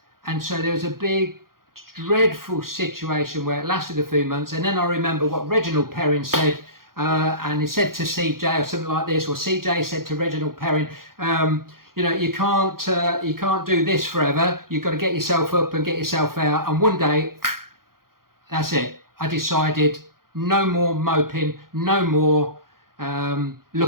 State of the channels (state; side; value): late; left; 0.92 ms